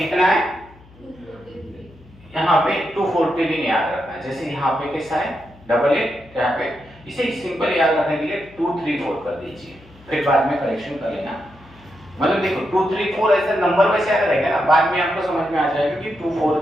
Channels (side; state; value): left; noise; hum, 25 dB below the sound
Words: है? यहाँ पे 240 दिन याद रखना है। जैसे यहाँ पे कैसा है? डबल है, यहाँ पे इसे सिंपल याद रखने के लिए 234 कर दीजिए, फिर बाद में करेक्शन कर लेना। मतलब देखो 234 ऐसा नंबर वैसे याद रहेगा ना, बाद में आपको समझ में आ जाएगा कि